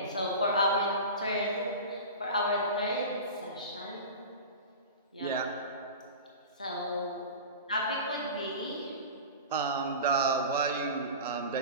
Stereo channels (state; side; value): inverted; both; correlation -0.31